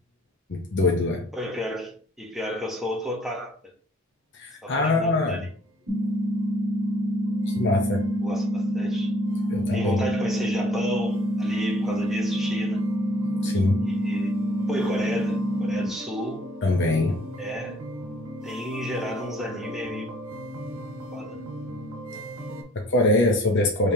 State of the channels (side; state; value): both; normal; correlation 0.58